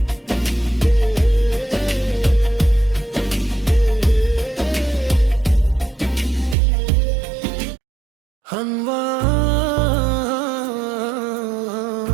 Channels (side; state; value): left; drops out; at 6.6 s